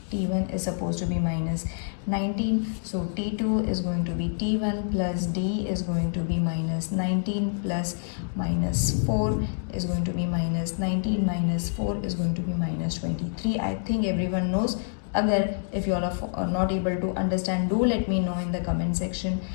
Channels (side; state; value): right; silent; digital silence